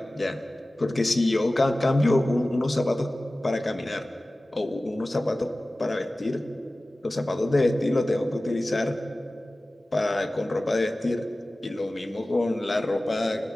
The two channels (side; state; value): both; normal; correlation 0.97